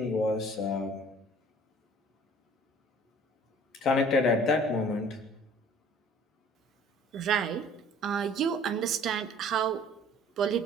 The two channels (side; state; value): both; normal; correlation 0.51